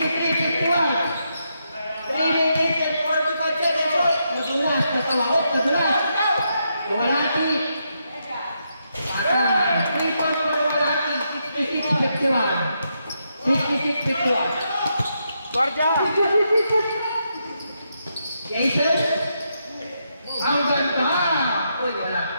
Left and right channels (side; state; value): both; inverted; correlation -0.81